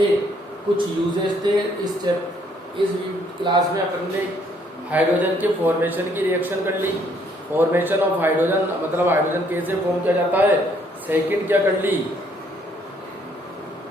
कुछ यूजेस थे। इस क्लास में अपन ने हाइड्रोजन के फॉर्मेशन की रिएक्शन कर ली, फॉर्मेशन ऑफ हाइड्रोजन, मतलब हाइड्रोजन कैसे फॉर्म किया जाता है। सेकंड क्या कर ली,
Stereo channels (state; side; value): normal; both; correlation 0.66